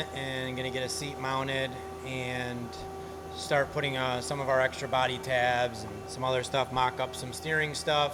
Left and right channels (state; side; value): identical; both; correlation 1.00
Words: and going to get a seat mounted and start putting some of our extra body tabs and some other stuff, mock up some steering